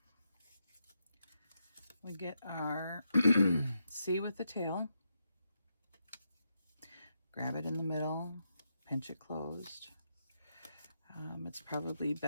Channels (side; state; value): both; inverted; correlation -0.83